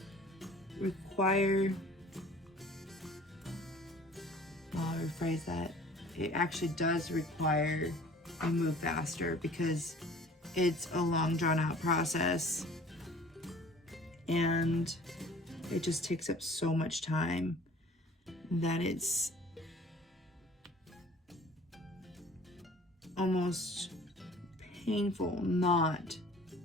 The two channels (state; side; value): normal; both; correlation 0.49